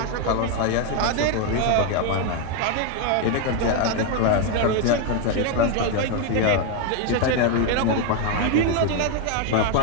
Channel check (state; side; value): different; both; correlation 0.01